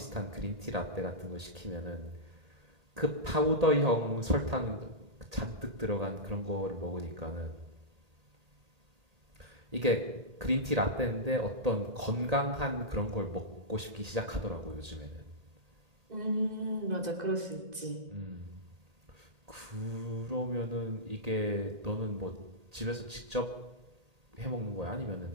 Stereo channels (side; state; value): left; late; 1.8 ms